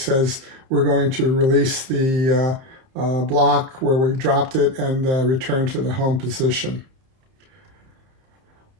we're going to release the block where we dropped it and return to the home position.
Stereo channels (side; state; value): left; late; 30 ms